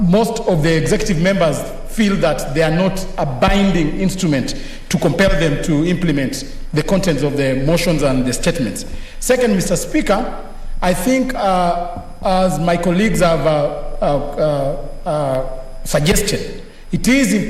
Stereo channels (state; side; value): identical; both; correlation 1.00